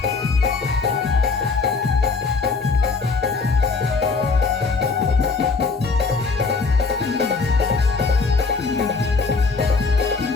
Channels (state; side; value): quieter; right; 4.4 dB